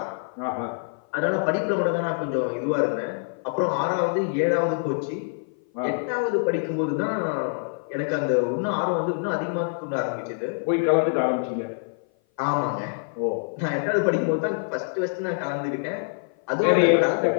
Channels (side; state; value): right; silent; 56 dB below the other